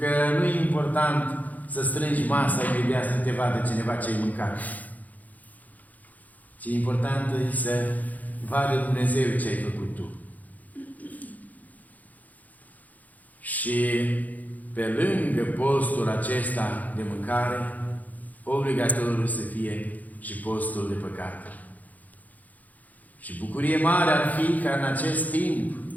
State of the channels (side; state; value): right; late; 0.079 ms